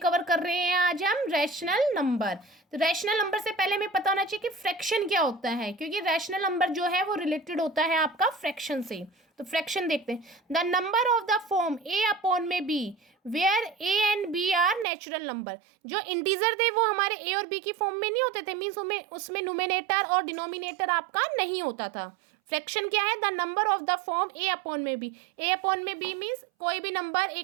कवर कर रहे हैं आज हम रैशनल नंबर। तो रैशनल नंबर से पहले हमें पता होना चाहिए कि फ्रैक्शन क्या होता है, क्योंकि रैशनल नंबर जो है वो रिलेटेड होता है आपका फ्रैक्शन से। तो फ्रैक्शन देखते हैं। The number of the form A upon में B where A and B are natural number. जो इंटीजर थे वो हमारे ए और बी की फॉर्म में नहीं होते थे, मीन्स उसमें न्यूमेरेटर और डिनोमिनेटर आपका नहीं होता था। फ्रैक्शन क्या है? The number of the form A upon में बी। ए अपॉन में बी मीन्स कोई भी नंबर,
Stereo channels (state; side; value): drops out; left; at 14.9 s